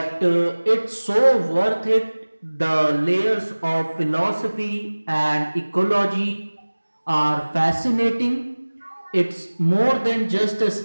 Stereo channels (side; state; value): both; inverted; correlation -1.00